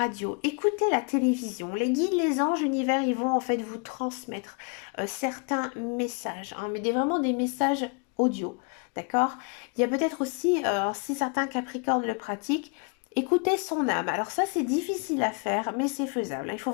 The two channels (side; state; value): right; quieter; 35.9 dB